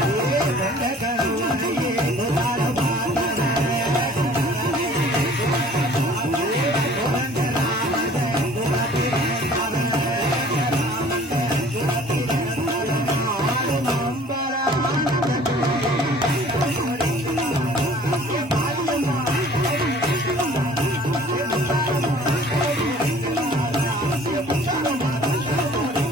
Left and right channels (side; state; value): both; normal; correlation 0.51